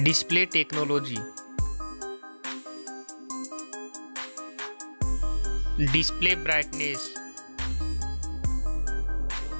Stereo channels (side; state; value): both; inverted; correlation -1.00